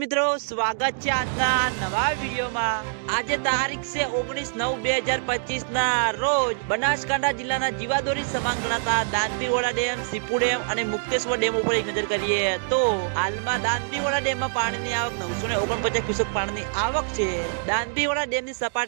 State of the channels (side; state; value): left; silent; digital silence